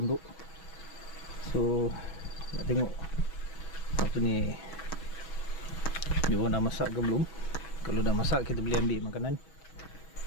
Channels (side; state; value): right; late; 6.3 ms